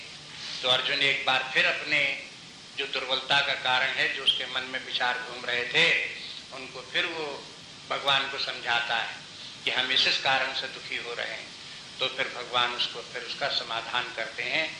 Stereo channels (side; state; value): both; identical; correlation 1.00